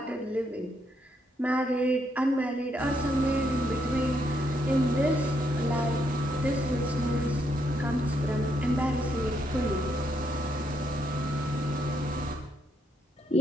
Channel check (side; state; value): both; normal; correlation 0.76